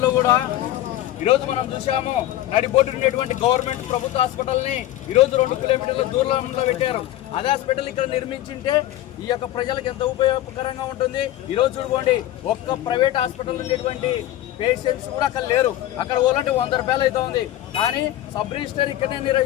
కూడా ఈరోజు మనం చూసాము. నడిబొడ్డు ఉండేటువంటి గవర్నమెంట్ ప్రభుత్వ హాస్పిటల్ని ఈరోజు 2 కిలోమీటర్ల దూరంలో పెట్టారు. అదే హాస్పిటల్ ఇక్కడ నిర్మించింటే ఈ యొక్క ప్రజలకు ఎంత ఉపయోగకరంగా ఉంటుంది. ఈరోజు చూడండి, ఒక్క ప్రైవేట్ హాస్పిటల్ ఉండేటువంటి పేషెంట్స్ కూడా అక్కడ లేరు. అక్కడ పోవాలంటే 100 రూపాయలు అయితే ఉంది. కానీ సబ్ రిజిస్టర్ ఇక్కడనే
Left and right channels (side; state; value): right; quieter; 14.0 dB